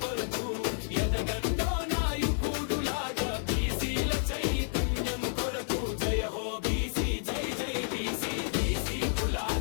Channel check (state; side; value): silent; right; digital silence